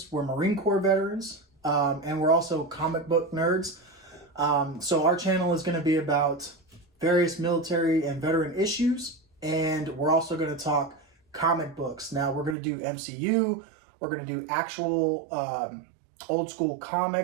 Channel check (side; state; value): left; drops out; at 12.6 s